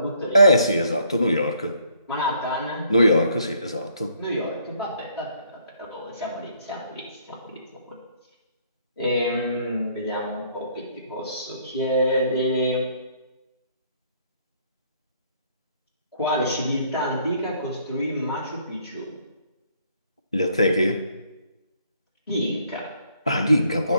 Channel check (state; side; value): inverted; both; correlation -0.66